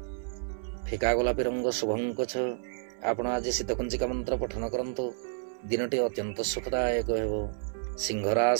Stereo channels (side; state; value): left; silent; 58 dB below the other